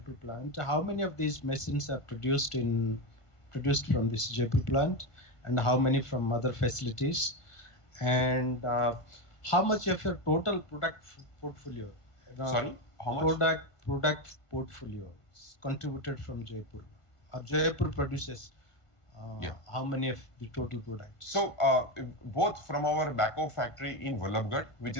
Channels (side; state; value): right; late; 1.5 ms